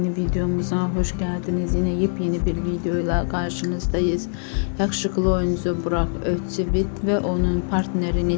videomuza hoş geldiniz. Yine yepyeni bir videoyla karşınızdayız. Yakışıklı oyuncu Burak Özçivit ve onun partneri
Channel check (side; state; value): right; silent; 60 dB below the other